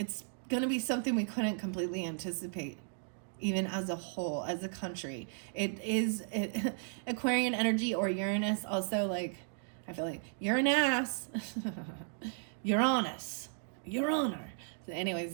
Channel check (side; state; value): left; silent; 54 dB below the other